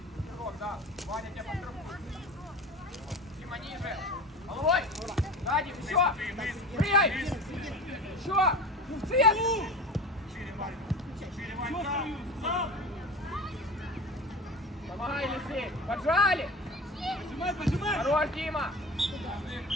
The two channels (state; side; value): normal; both; correlation 0.33